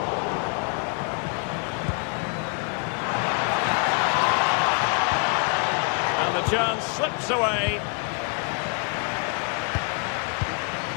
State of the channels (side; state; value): right; quieter; 38.2 dB